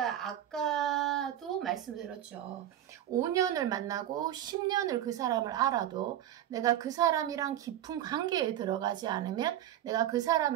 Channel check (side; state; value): left; quieter; 11.8 dB